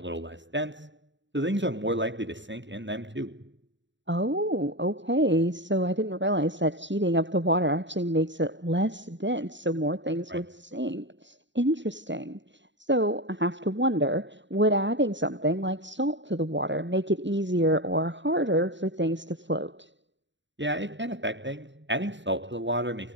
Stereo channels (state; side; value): late; left; 0.53 ms